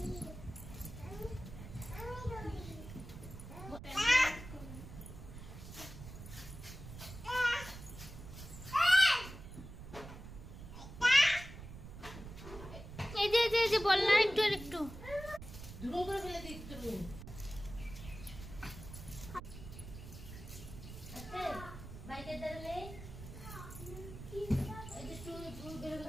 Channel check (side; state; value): right; noise; rumble, 12 dB below the sound